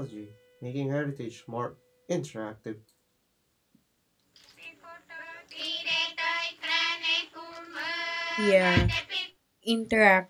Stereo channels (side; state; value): both; identical; correlation 1.00